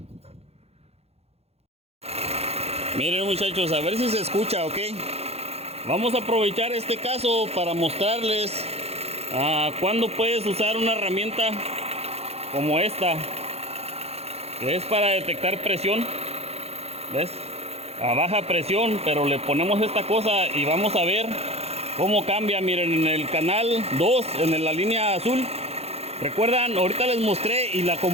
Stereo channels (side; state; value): left; late; 0.30 ms